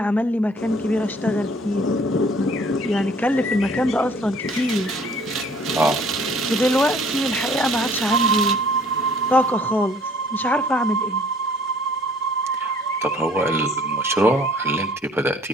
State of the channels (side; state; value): both; normal; correlation 0.56